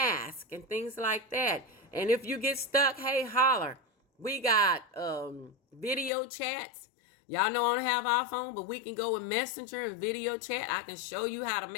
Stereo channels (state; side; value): drops out; right; at 6.1 s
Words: and things like that? And if you get stuck, hey, holler. We got video chats. Y'all know I don't have our phone, but we can go with Messenger and video chat. I can show you how to